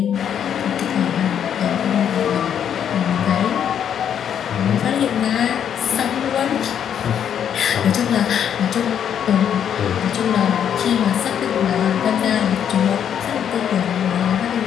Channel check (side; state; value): right; quieter; 8.9 dB